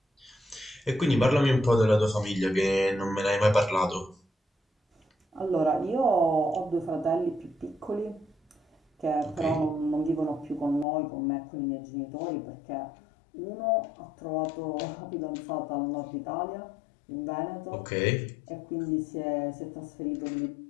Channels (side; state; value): right; drops out; at 10.9 s